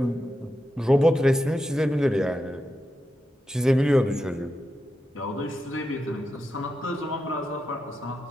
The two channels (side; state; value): both; normal; correlation 0.88